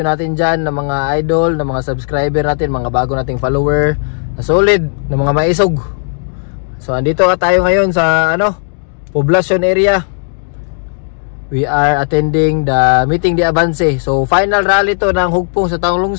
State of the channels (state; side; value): silent; right; digital silence